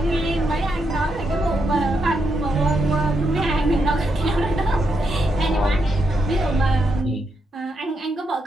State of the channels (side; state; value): both; normal; correlation 0.81